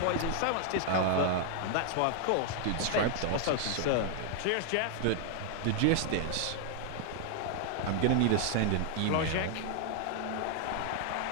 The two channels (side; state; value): both; different; correlation 0.00